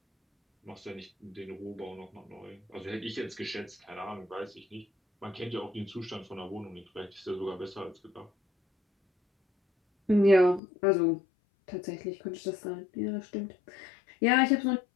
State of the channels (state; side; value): drops out; right; at 10.6 s